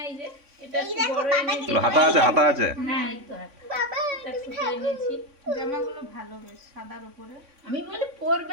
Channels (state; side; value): late; left; 3.6 ms